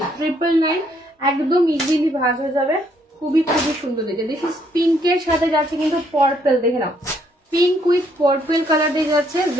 999 একদম ইজিলি ভাজ হয়ে যাবে, খুবই খুবই সুন্দর দেখে। দেখি পিঙ্কের সাথে যাচ্ছে কিন্তু পার্পল, দেখে নাও পিঙ্ক উইথ পার্পল কালার দিয়ে যাচ্ছে,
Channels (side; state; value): both; normal; correlation 0.70